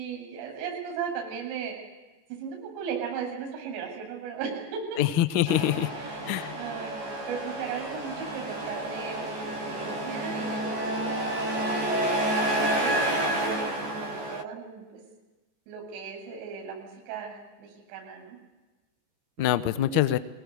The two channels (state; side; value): late; left; 14 ms